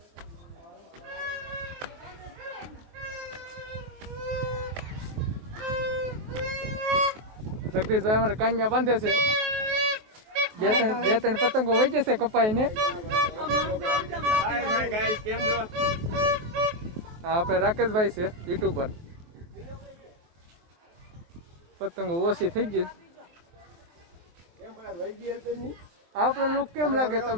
જગદીશભાઈ અમારે કાન્યા બાંધે છે. બે ત્રણ પતંગો વહી જશે કપાઈ ને. હા, આપણે રાકેશભાઈ છે યુટ્યુબર. પતંગો ઓછી થઈ ગઈ. આપણો લુક કેમ લાગે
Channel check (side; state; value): left; late; 23 ms